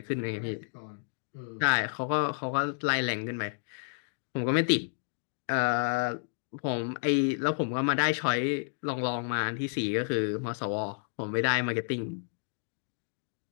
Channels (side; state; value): right; silent; digital silence